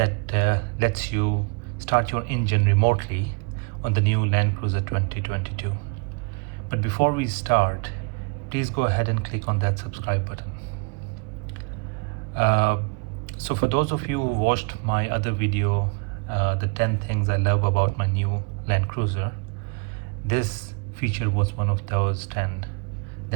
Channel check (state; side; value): quieter; left; 33.1 dB